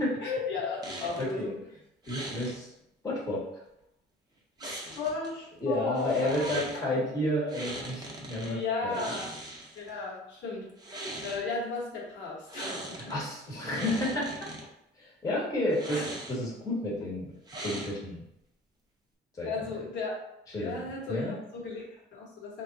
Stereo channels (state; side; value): normal; both; correlation 0.42